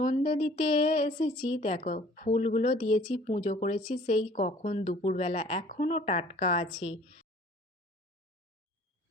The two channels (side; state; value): both; normal; correlation 0.53